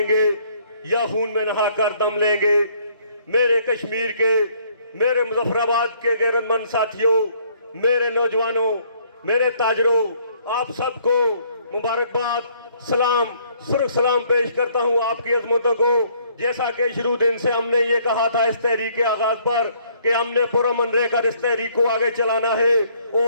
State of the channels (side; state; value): both; inverted; correlation -0.64